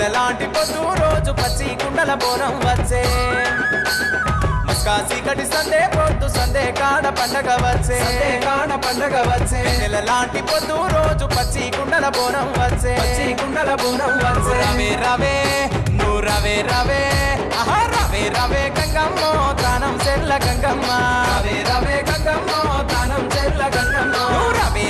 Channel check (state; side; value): identical; both; correlation 1.00